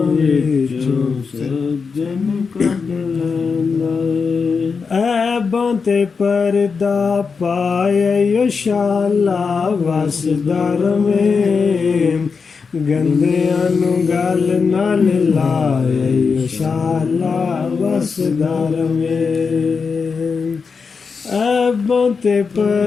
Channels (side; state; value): right; quieter; 5.3 dB